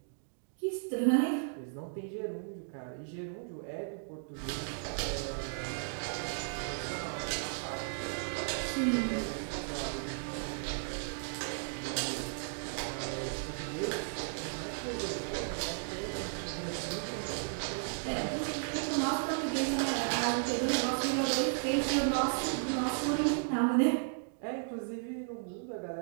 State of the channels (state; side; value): silent; left; digital silence